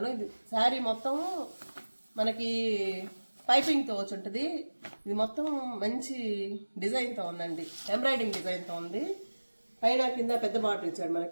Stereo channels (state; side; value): inverted; both; correlation -1.00